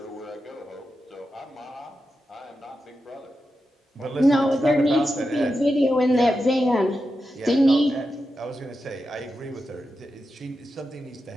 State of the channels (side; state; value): both; normal; correlation 0.89